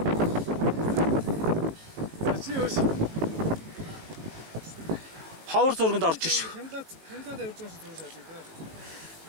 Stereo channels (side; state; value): left; late; 19 ms